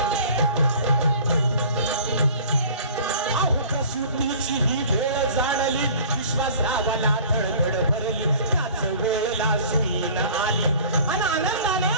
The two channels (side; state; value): both; inverted; correlation -0.46